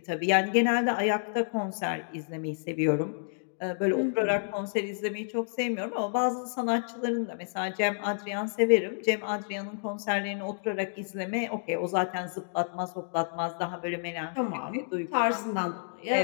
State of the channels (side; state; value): right; silent; digital silence